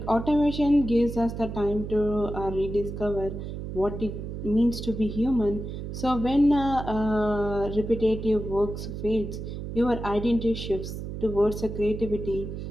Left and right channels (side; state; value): right; noise; hum, 7 dB below the sound